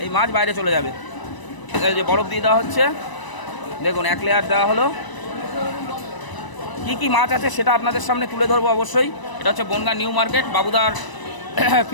এই মাছ বাইরে চলে যাবে। এই যে বরফ দিয়ে দেওয়া হচ্ছে, দেখুন 1 লেয়ার দেওয়া হলো। কি কি মাছ আছে সেটা আপনাদের সামনে তুলে ধরবো অবশ্যই। এটা হচ্ছে বনগাঁ নিউ মার্কেট বাবুদার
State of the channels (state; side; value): late; right; 1.0 ms